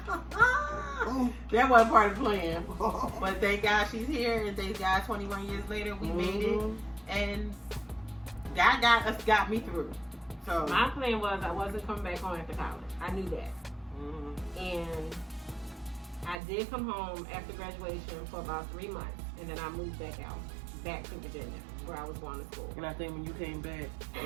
that wasn't part of the plan. But thank God she's here, and thank God 21 years later we made it, Mhm. and God got me through. So my plan was I wasn't coming back home after college. I knew that. mhm. And I did come home after graduation for about 3 months, and then I moved back to Virginia, where I was going to school. And I think when you came back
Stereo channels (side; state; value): left; drops out; at 16.4 s